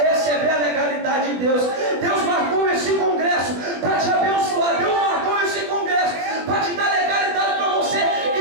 a legalidade de Deus. Deus marcou esse congresso para te abençoar. Deus marcou esse congresso para te dar legalidade para você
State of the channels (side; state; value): left; late; 20 ms